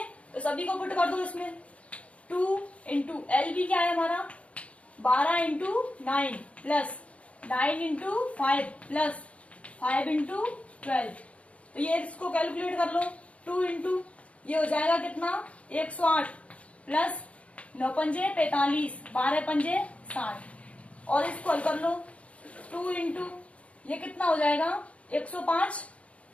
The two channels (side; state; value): right; late; 0.064 ms